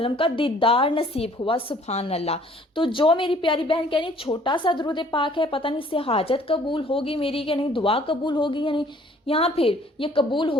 کا دیدار نصیب ہوا۔ سبحان اللہ۔ تو جو میری پیاری بہن کہہ رہی ہے چھوٹا سا درود پاک ہے، پتہ نہیں اس سے حاجت قبول ہوگی میری کہ نہیں، دعا قبول ہوگی یا نہیں، یہاں پھر یہ قبول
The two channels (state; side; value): normal; both; correlation 0.57